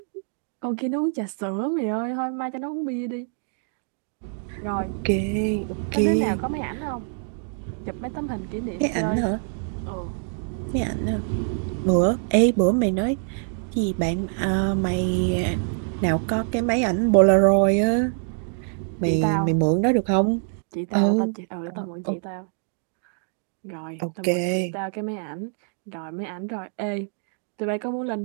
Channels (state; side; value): silent; left; 62 dB below the other